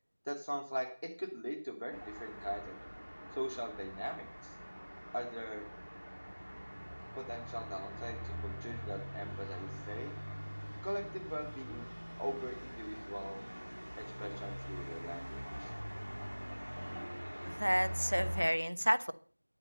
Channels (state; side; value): inverted; both; correlation -1.00